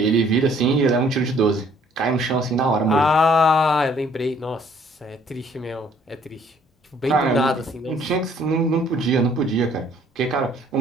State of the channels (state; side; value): normal; both; correlation 0.61